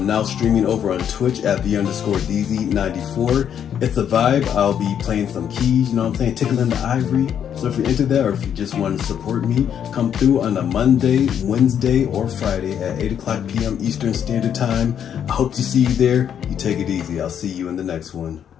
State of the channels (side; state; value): right; quieter; 8.9 dB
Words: now streaming over on Twitch at _DZ94. It's a vibe. I'll be playing some keys, you know what I'm saying, tickling the ivory. So if you're into that, or if you just want to support me, come through on a Monday, Wednesday, or Friday at 8 o'clock p.m. Eastern Standard Time. I hope to see you there. You take it easy. I'll see you in the next one.